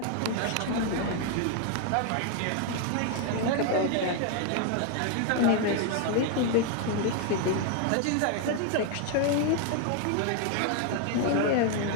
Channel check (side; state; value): both; different; correlation 0.00